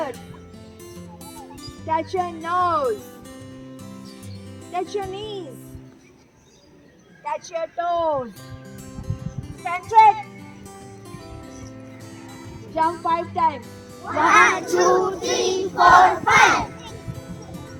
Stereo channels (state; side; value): identical; both; correlation 1.00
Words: Touch your nose. Touch your knees. Touch your toes. Stand straight. Jump 5 times. 1, 2, 3, 4, 5.